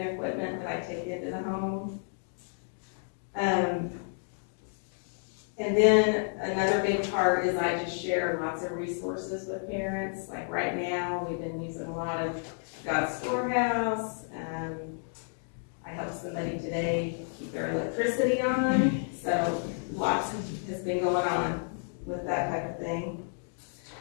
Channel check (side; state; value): right; silent; 57 dB below the other